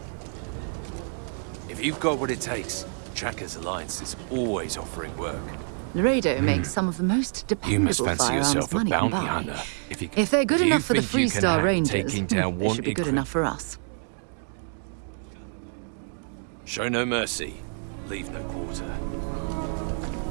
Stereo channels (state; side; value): silent; left; 60 dB below the other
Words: If you've got what it takes, Trackers Alliance is always offering work. Laredo makes some of the most You must dependable fancy firearms yourself a money can bounty buy. hunter. If they're good if you enough for the think you can Freestar hack Rangers, taking down they should be wanted good enough for us. Show no mercy, leave no quarter.